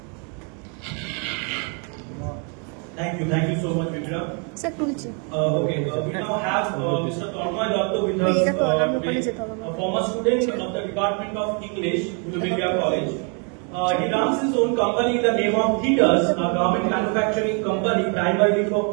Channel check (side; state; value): left; quieter; 38.0 dB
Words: Thank you so much, Vidya. Sir তুলছি। Okay, we now have Mr. Tornoy Datta with us, Mera to alarm upone jete hobe a former student of the Department of English, Uluberia College. He runs his own company in the name of Theaters, a garment manufacturing company primarily for